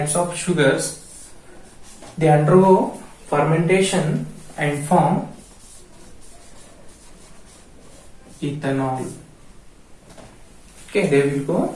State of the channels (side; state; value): both; identical; correlation 1.00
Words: of sugars. They undergo fermentation and form ethanol. Okay, they will go